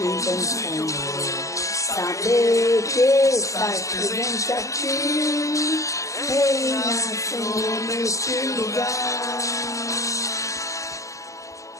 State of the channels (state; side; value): late; right; 0.15 ms